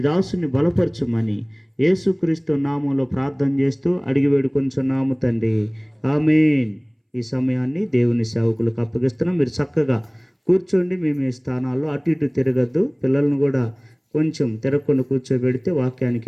దాసుని బలపరచమని యేసుక్రీస్తు నామంలో ప్రార్థన చేస్తూ అడిగి వేడుకొంచున్నాము తండ్రి. ఆమేన్. ఈ సమయాన్ని దేవుని సేవకులకు అప్పగిస్తున్నాం. మీరు చక్కగా కూర్చోండి. మీ మీ స్థానాల్లో అటు ఇటు తిరగద్దు. పిల్లలను కూడా కొంచెం తిరగకుండా కూర్చోబెడితే వాక్యానికి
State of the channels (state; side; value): identical; both; correlation 1.00